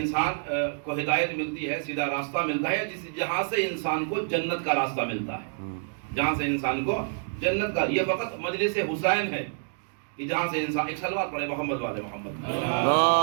کو ہدایت ملتی ہے، سیدھا راستہ ملتا ہے، جہاں سے انسان کو جنت کا راستہ ملتا ہے، جہاں سے انسان کو جنت کا. یہ فقط مجلس حسین ہے کہ جہاں سے انسان. ایک صلوات پڑھے محمد والے محمد.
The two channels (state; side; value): silent; left; digital silence